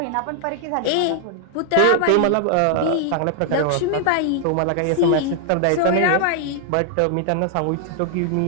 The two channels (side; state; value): both; different; correlation 0.00